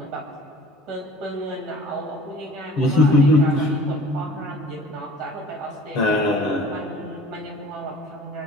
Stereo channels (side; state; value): both; normal; correlation 0.46